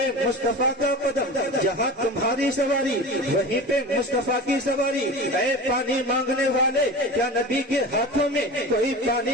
مصطفیٰ کا قدم، جہاں تمہاری سواری وہیں پہ مصطفیٰ کی سواری۔ اے پانی مانگنے والے، کیا نبی کے ہاتھوں میں کوئی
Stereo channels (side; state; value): both; normal; correlation 0.32